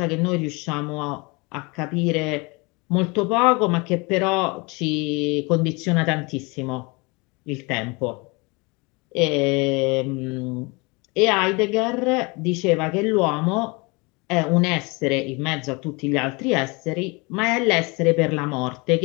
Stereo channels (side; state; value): right; quieter; 27.8 dB